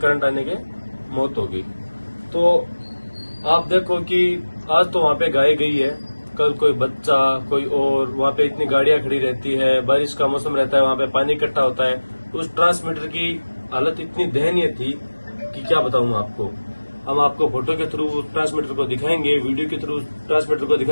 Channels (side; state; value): both; inverted; correlation -1.00